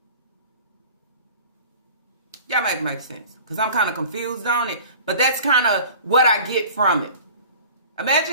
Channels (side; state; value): both; inverted; correlation -0.42